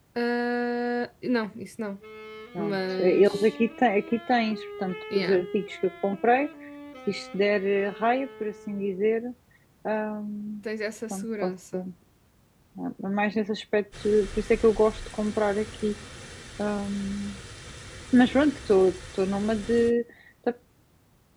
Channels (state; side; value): identical; both; correlation 1.00